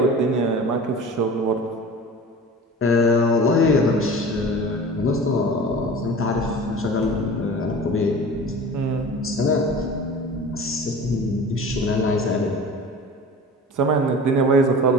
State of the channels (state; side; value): normal; both; correlation 0.37